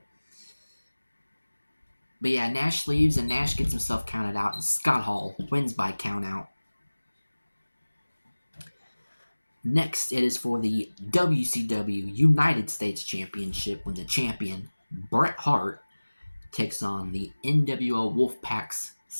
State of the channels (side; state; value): both; inverted; correlation -1.00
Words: But yeah, Nash leaves and Nash gets himself counted out, and Scott Hall wins by countout. Next, it is for the WCW United States Championship when the champion, Bret Hart, takes on the NWO Wolfpack's